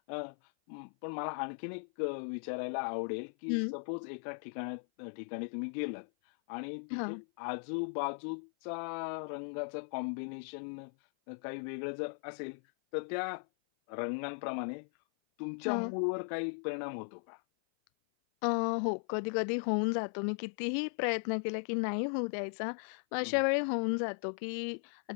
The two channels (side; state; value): right; silent; 53 dB below the other